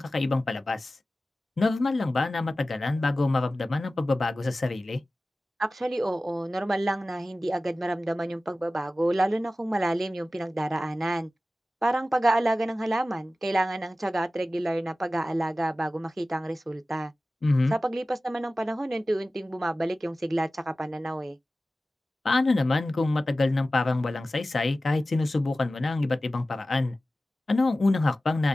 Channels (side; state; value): both; normal; correlation 0.96